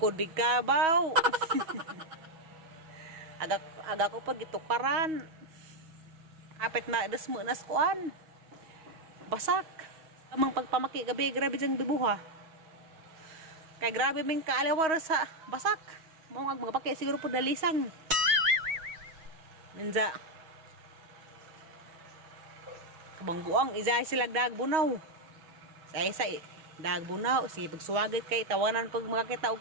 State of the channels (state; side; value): late; left; 6.3 ms